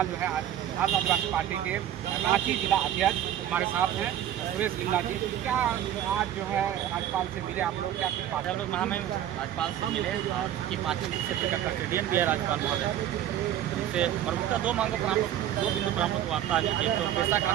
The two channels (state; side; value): quieter; left; 11.3 dB